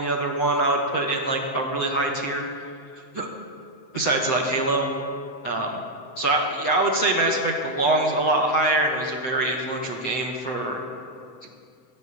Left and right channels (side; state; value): right; late; 7.8 ms